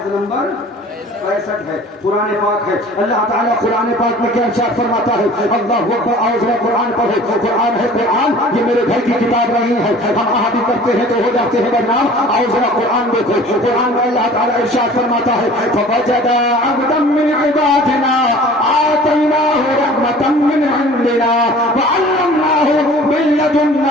نمبر 65 ہے، قرآن پاک ہے۔ اللہ تعالیٰ قرآن پاک میں کیا ارشاد فرماتا ہے؟ اللہ اکبر، آؤ قرآن پڑھے، قرآن ہے قرآن، یہ میرے گھر کی کتاب نہیں ہے، ہم آدھی کرتے ہیں تو ہو جاتے ہیں بدنام، آؤ ذرا قرآن دیکھو۔ قرآن میں اللہ تعالیٰ ارشاد فرماتا ہے فَوَجَدَ عَبْدًا مِّنْ عِبَادِنَا آتَيْنَاهُ رَحْمَةً مِّنْ عِندِنَا وَعَلَّمْنَاهُ مِن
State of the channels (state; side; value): normal; both; correlation 0.46